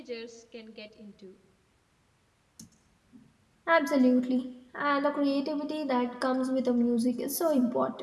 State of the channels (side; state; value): both; identical; correlation 1.00